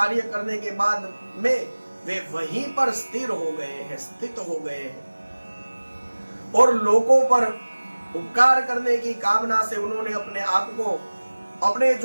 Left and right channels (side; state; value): both; inverted; correlation -1.00